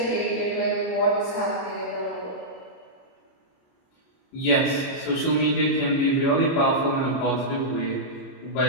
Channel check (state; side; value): late; right; 30 ms